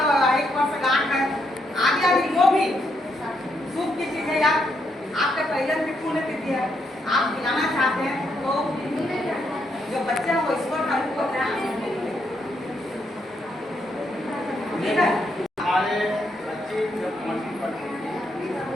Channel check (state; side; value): normal; both; correlation 0.77